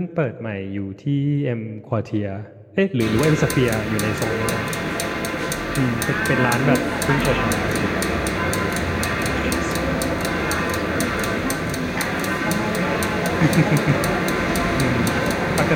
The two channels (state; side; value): identical; both; correlation 1.00